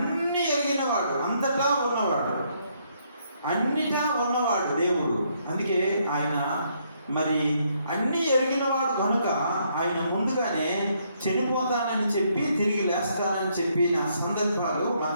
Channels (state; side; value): inverted; both; correlation -0.72